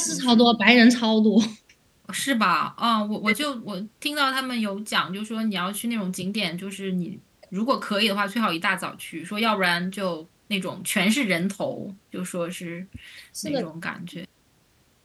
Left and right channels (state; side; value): identical; both; correlation 1.00